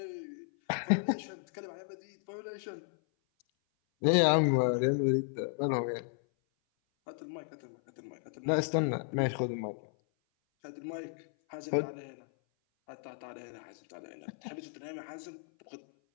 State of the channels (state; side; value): silent; right; 55 dB below the other